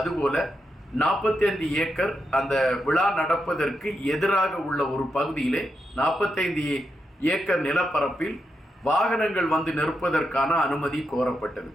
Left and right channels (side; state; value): both; normal; correlation 0.85